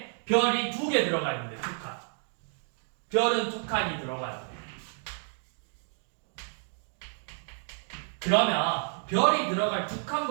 별이 2개 들어가 있는데 2칸. 별은 2칸이 들어가야 돼. 그러면 별이 들어갈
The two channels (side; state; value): left; silent; 57 dB below the other